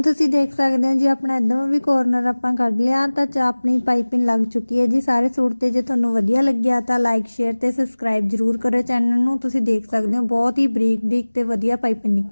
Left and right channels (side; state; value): both; inverted; correlation -1.00